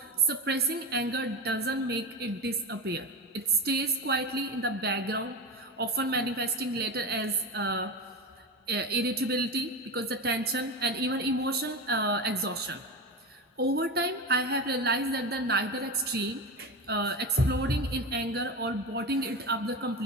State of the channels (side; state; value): both; normal; correlation 0.22